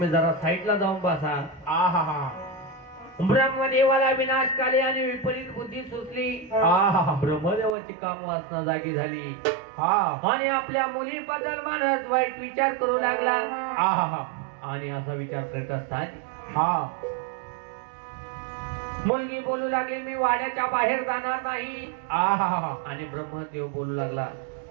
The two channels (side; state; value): left; drops out; at 7.8 s